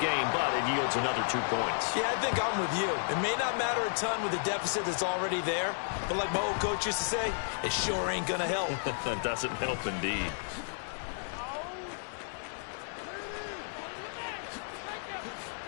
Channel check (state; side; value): silent; right; digital silence